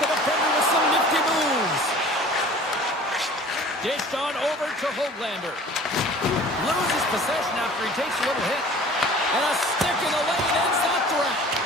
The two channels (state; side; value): normal; both; correlation 0.46